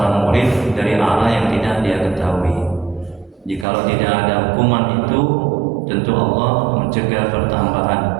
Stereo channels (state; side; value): drops out; left; at 3.7 s